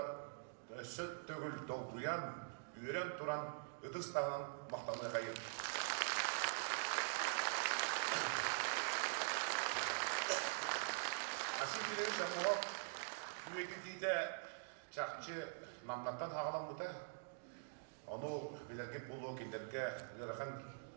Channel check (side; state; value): left; silent; digital silence